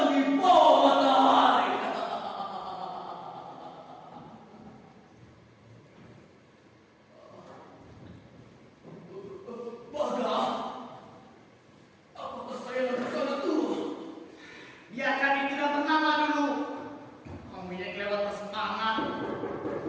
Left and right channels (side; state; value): both; identical; correlation 1.00